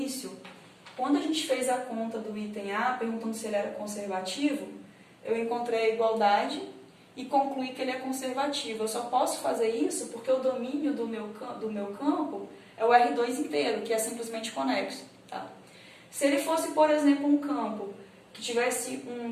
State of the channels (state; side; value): identical; both; correlation 1.00